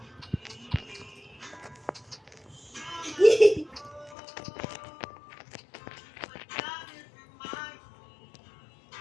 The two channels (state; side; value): drops out; right; at 4.2 s